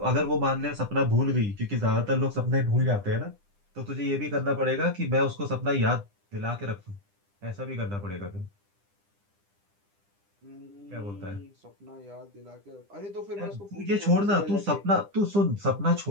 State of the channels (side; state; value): left; late; 9.9 ms